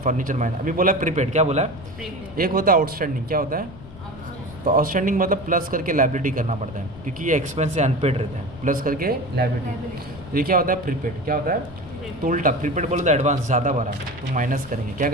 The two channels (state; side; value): noise; left; rumble, 17 dB below the sound